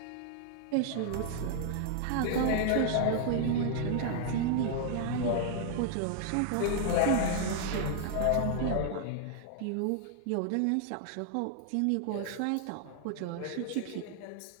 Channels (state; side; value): different; both; correlation 0.00